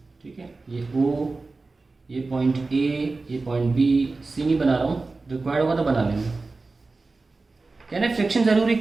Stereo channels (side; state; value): left; quieter; 3.7 dB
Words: ठीक है, ये O, ये पॉइंट A, ये पॉइंट B, C नहीं बना रहा हूँ, रिक्वायर्ड होगा तो बना लेंगे. कहने फ्रिक्शन जरूरी